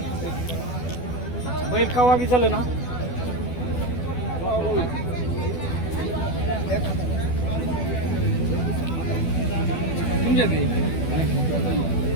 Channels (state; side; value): late; right; 12 ms